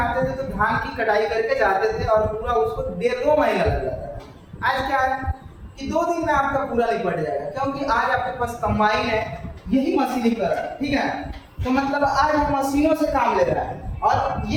थे तो धान की कटाई करके जाते थे, और पूरा उसको 1.5-2 महीना लग जाता था। आज क्या है कि 2 दिन में आपका पूरा निपट जाएगा, क्योंकि आज आपके पास कंबाइन है, यही मशीनीकरण। ठीक है। तो मतलब आज हम मशीनों से काम ले रहा है, और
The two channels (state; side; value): identical; both; correlation 1.00